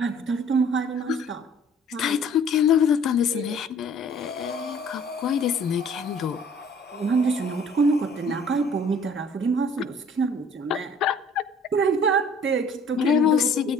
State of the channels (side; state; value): both; normal; correlation 0.54